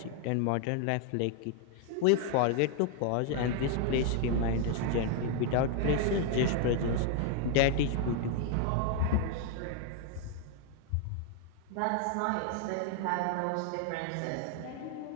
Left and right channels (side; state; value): both; different; correlation 0.00